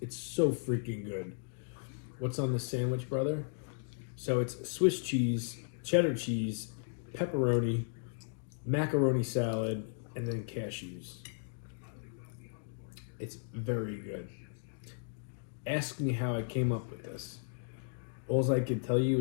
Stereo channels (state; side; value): silent; right; digital silence